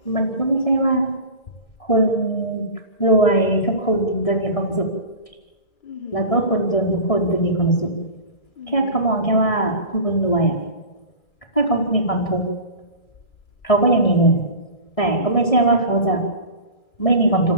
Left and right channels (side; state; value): right; late; 1.6 ms